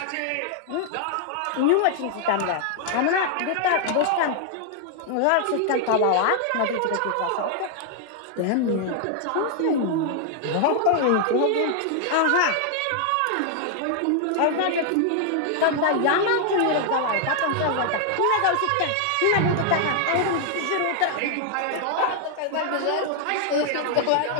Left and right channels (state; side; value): different; both; correlation 0.00